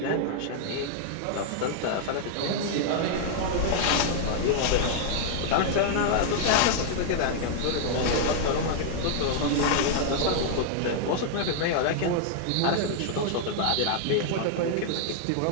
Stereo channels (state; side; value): different; both; correlation -0.01